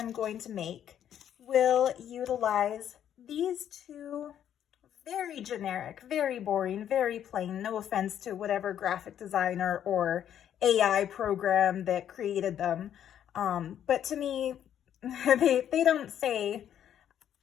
going to make will utilize these 2 very generic, very boring, very plain, no offense to whatever graphic designer or AI program that created them. But to me, they don't say,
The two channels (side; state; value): right; quieter; 10.0 dB